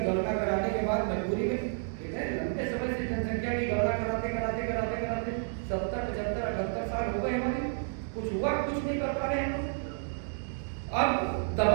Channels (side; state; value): left; silent; digital silence